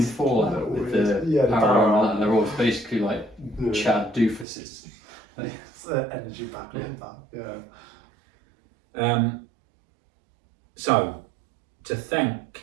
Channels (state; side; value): drops out; left; at 4.5 s